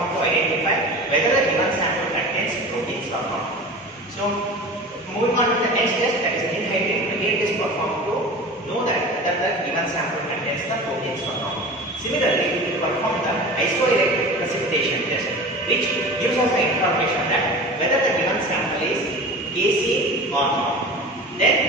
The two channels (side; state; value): both; normal; correlation 0.35